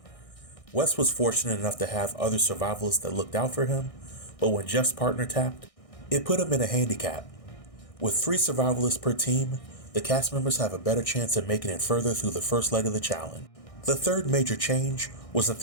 Wes was fortunate enough to have other survivalists that looked out for him, but when Jeff's partner tapped, it put him in a handicap. With 3 survivalists per team, the cast members have a better chance of making it further through the first leg of the challenge. The third major change was that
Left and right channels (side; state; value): right; late; 1.6 ms